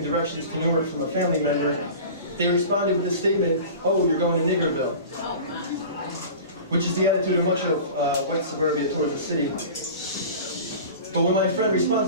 directions to Newark from a family member, they responded with the statement, "Oh, you're going to Niggerville," which is the attitude of much of white suburbia towards the city. But when my friend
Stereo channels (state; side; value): inverted; both; correlation -0.37